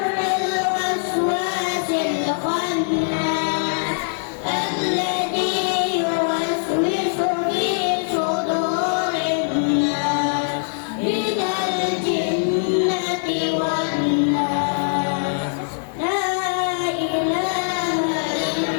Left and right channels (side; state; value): right; silent; digital silence